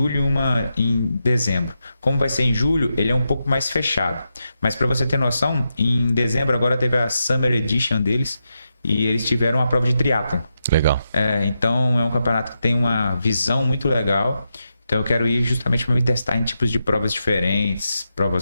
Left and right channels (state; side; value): inverted; both; correlation -0.87